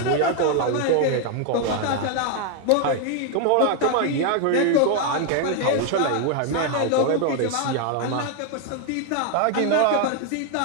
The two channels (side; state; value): both; different; correlation 0.01